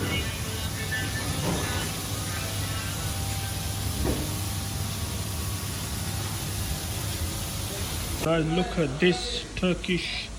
Guys, look at this Turkish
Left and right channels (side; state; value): both; identical; correlation 1.00